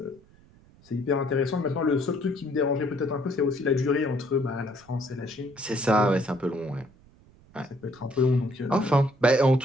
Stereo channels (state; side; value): noise; right; rumble, 27 dB below the sound